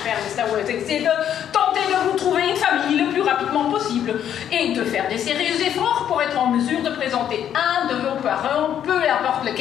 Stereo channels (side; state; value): right; quieter; 9.8 dB